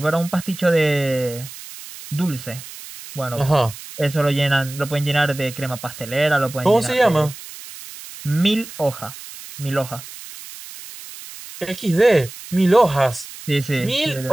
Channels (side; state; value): right; noise; hiss, 15 dB below the sound